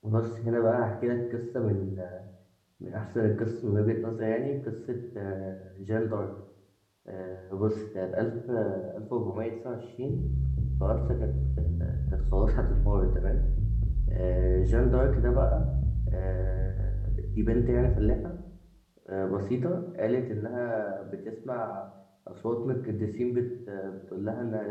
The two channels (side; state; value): both; identical; correlation 1.00